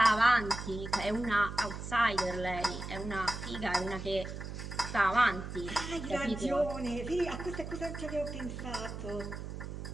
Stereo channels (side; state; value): right; noise; hum, 8 dB below the sound